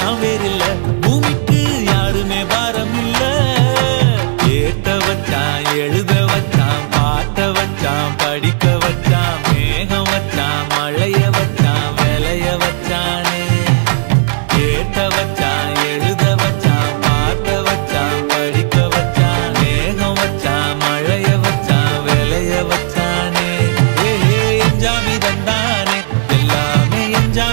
வேறு இல்ல பூமிக்கு யாருமே பாரம் இல்ல ஏத்த வச்சான் எழுத வச்சான் பாட்ட வச்சான் படிக்க வச்சான் மேகம் வச்சான் மழைய வச்சான் விளைய வச்சானே ஏத்த வச்சான் எழுத வச்சான் பாட்ட வச்சான் படிக்க வச்சான் மேகம் வச்சான் மழைய வச்சான் விளைய வச்சானே ஏஹே எஞ்சாமி தந்தானே எல்லாமே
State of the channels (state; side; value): silent; left; digital silence